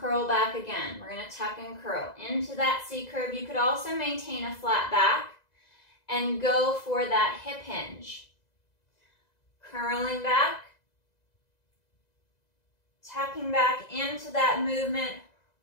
back again. We're going to tuck and curl into that C curve. You could also maintain a flat back and go for that hip hinge. Curling back, tucking back into that movement,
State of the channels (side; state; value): right; late; 2.0 ms